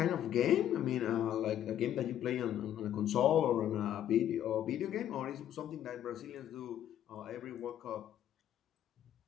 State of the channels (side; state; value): right; quieter; 11.0 dB